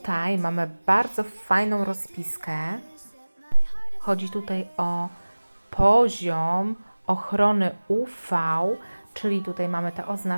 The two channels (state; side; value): inverted; both; correlation -1.00